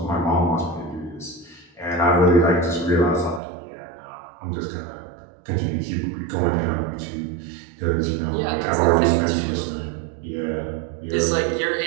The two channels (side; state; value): left; drops out; at 3.4 s